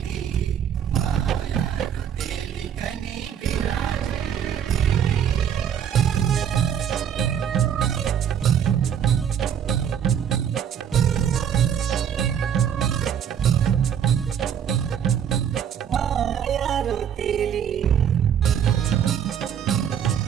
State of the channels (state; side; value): quieter; left; 8.6 dB